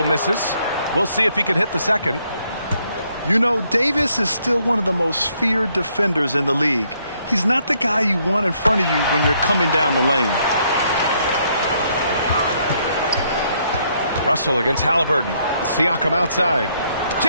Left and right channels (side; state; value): both; inverted; correlation -0.71